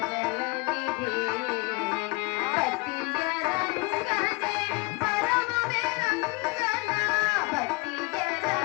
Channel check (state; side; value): quieter; right; 26.2 dB